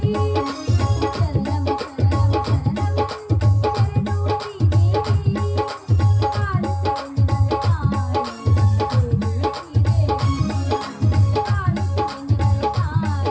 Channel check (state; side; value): identical; both; correlation 1.00